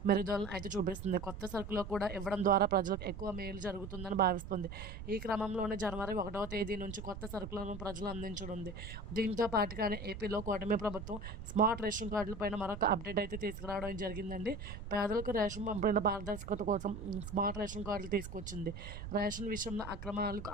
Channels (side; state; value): right; noise; rumble, 9 dB below the sound